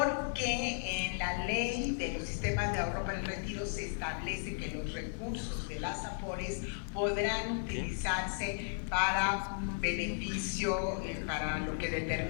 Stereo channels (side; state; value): right; silent; digital silence